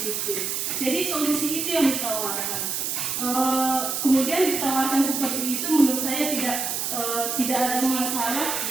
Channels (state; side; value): noise; right; hiss, 1 dB below the sound